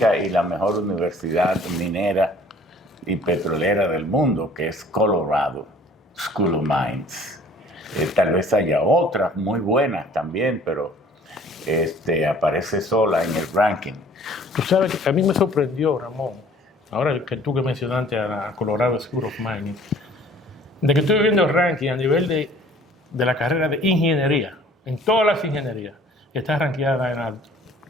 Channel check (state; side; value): normal; both; correlation 0.53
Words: y la mejor universidad minera y petrolera del mundo, que es Colorado School of Mines. Tal vez haya otras muy buenas también, pero aparece sola en el ranking. Tú sabes que a mí me sorprendió, Ramón, ahora que tú que mencionaste a la Colorado School of Mining, de que estoy viendo el ranking a nivel de la carrera de ingeniería, en todas las ingenierías, está rankeada en la